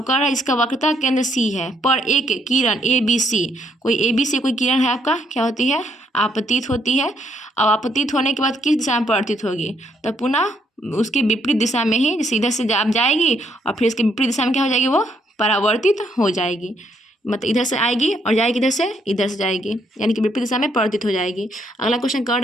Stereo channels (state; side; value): normal; both; correlation 0.71